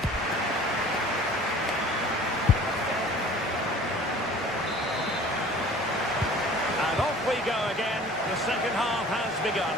And off we go again. The second half has begun.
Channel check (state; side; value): normal; both; correlation 0.47